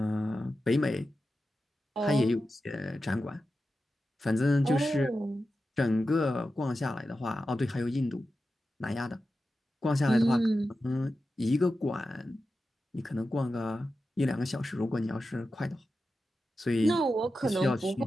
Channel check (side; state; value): both; normal; correlation 0.91